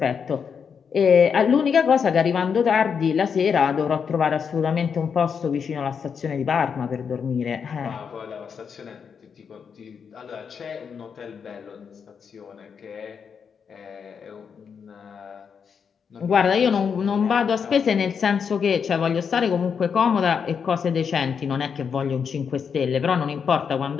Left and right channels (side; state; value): right; quieter; 6.6 dB